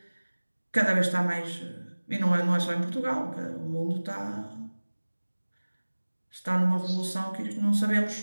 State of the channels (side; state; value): both; inverted; correlation -1.00